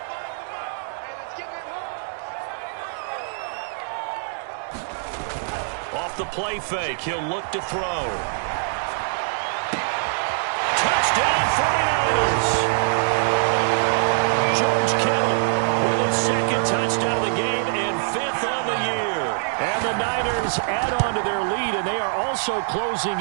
Off the play fake, he'll look to throw. Touchdown, 49ers! George Kittle with his 2nd touchdown of the game and 5th on the year. And the Niners add on to their lead, and they are also closing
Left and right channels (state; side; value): silent; left; digital silence